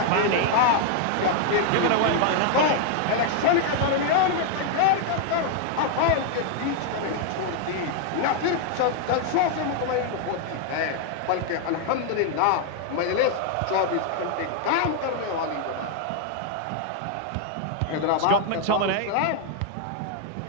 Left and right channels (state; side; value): different; both; correlation 0.00